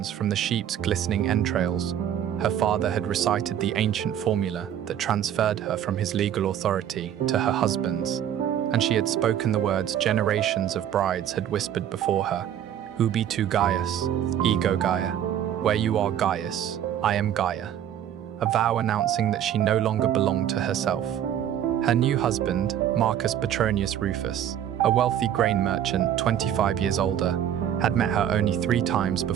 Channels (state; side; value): quieter; left; 10.2 dB